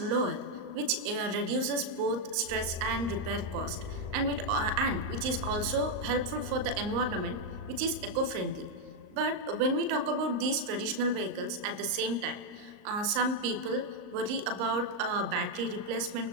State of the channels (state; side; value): late; left; 38 ms